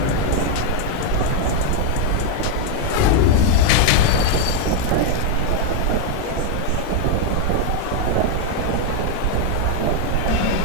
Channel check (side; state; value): both; different; correlation 0.01